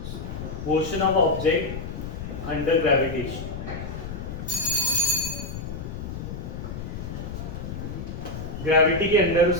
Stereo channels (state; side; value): noise; left; rumble, 7 dB below the sound